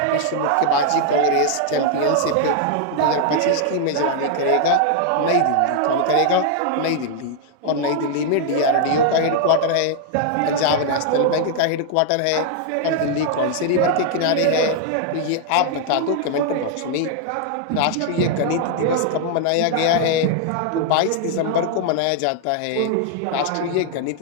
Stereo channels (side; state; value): both; different; correlation 0.00